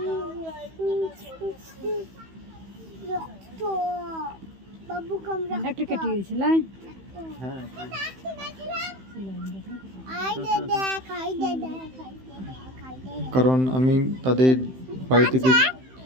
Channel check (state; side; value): late; left; 15 ms